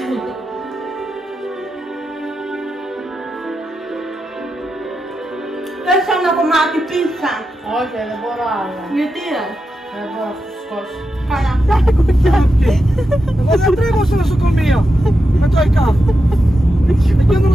Θες ένα κομμάτι πίτσα? Όχι, δεν μπορώ άλλο. Γιατί Δεν μπορώ να φουσκώσω. Καλά. Εγώ δεν τρέχω στο νοσοκομείο με το ΕΚΑΒ. Εκεί το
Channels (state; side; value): normal; both; correlation 0.88